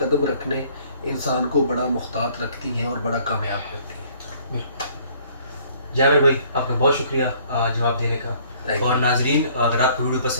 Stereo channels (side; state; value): both; inverted; correlation -0.59